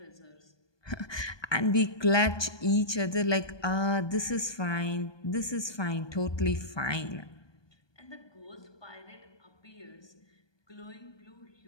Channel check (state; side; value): late; right; 1.2 ms